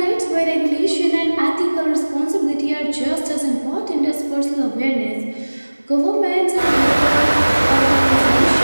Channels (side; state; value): both; inverted; correlation -1.00